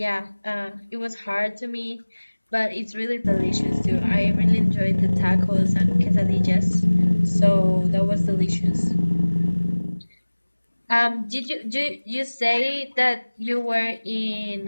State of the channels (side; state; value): both; inverted; correlation -1.00